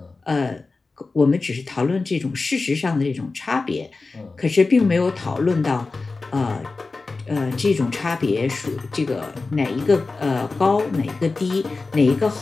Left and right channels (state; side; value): quieter; right; 3.8 dB